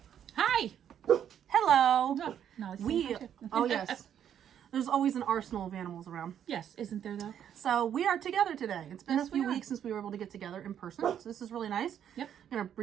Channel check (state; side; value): quieter; left; 9.4 dB